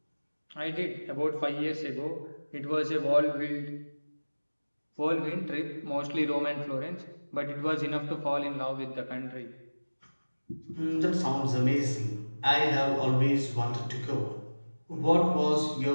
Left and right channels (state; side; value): inverted; both; correlation -1.00